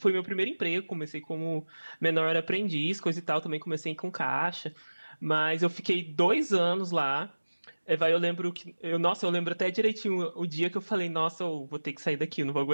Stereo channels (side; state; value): both; inverted; correlation -1.00